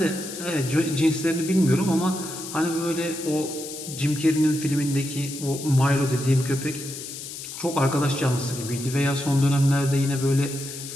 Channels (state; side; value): noise; left; hiss, 10 dB below the sound